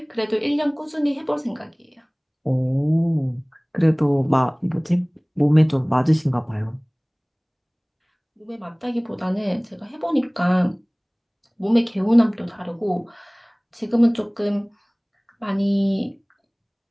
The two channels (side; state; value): both; identical; correlation 1.00